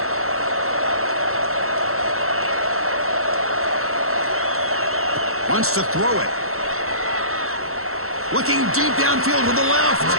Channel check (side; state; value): left; late; 0.63 ms